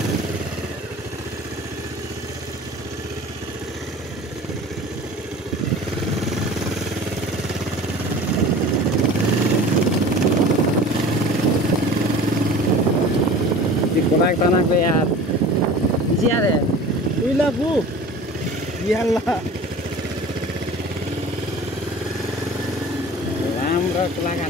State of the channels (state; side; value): normal; both; correlation 0.41